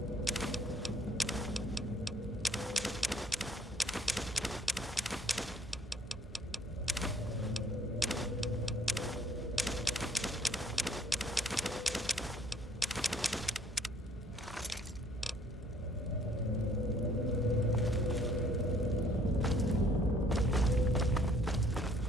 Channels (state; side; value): normal; both; correlation 0.61